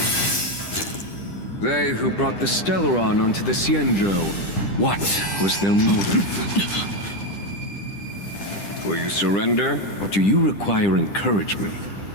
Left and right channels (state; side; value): late; right; 10 ms